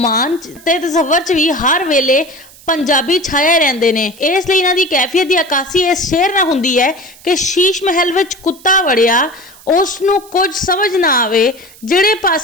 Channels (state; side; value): noise; right; hiss, 23 dB below the sound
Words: ते तसव्वुर च भी हर वेले पंजाबी छाए रहंदे ने। इसलिए इन्हां दी कैफियत की अक्कासी इस शेर नाल हुंदी है कि शीश महल विच कुत्ता वड़िया, उस नूं कुछ समझ ना आवे, जिहड़े